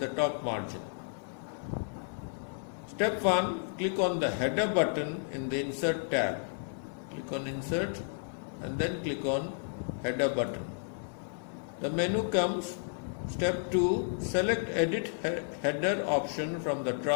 top margin. Step 1, click on the header button in the insert tab. Click on insert and then click on header button. The menu comes. Step 2, select edit header option from the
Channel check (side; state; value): right; silent; 56 dB below the other